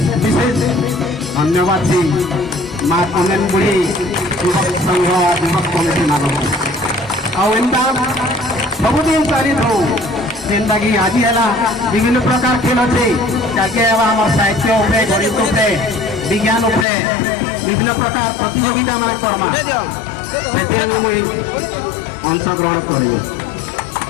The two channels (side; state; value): right; drops out; at 16.9 s